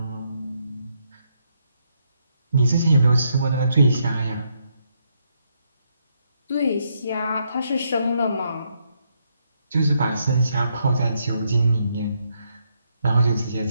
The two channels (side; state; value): both; inverted; correlation -0.77